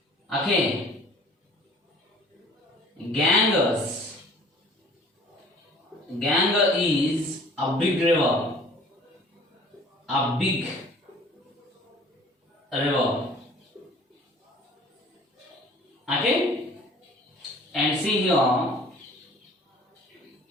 Okay, Ganges. Ganges is a big river. A big river. Okay? And see here,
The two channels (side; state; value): both; normal; correlation 0.50